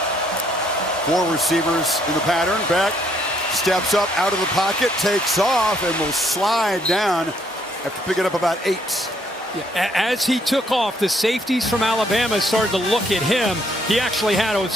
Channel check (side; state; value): both; normal; correlation 0.69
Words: 4 receivers in the pattern. Beck steps up out of the pocket, takes off, and will slide down after picking up about 8. Yeah, as he took off, the safeties from Alabama started to look at him. He actually had a